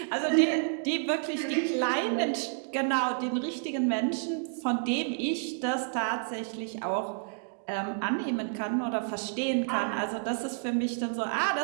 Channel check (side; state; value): left; silent; digital silence